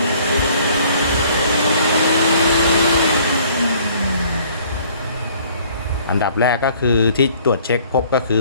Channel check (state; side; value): inverted; both; correlation -0.57